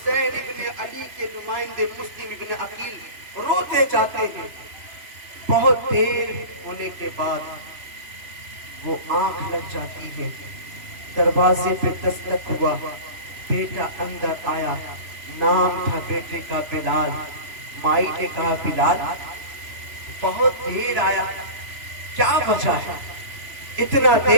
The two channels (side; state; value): left; late; 3.0 ms